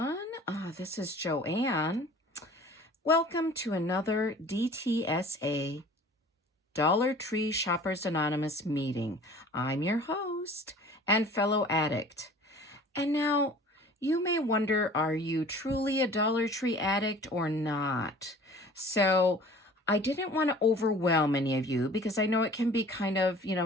This is Joanne. Welcome to another DTSA Dollar Tree Shoppers Anonymous meeting. I'm your host and fellow addict. And now, you may wonder, are you truly a Dollar Tree addict or not? So, I didn't want to overwhelm any of you because I know it can be kind of,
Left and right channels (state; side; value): normal; both; correlation 0.47